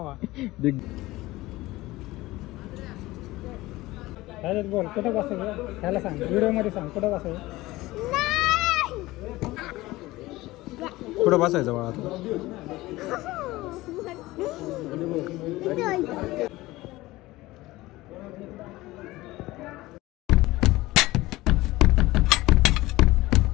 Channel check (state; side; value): quieter; right; 18.8 dB